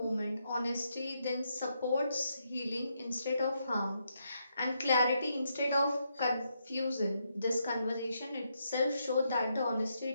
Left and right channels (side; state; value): both; inverted; correlation -0.79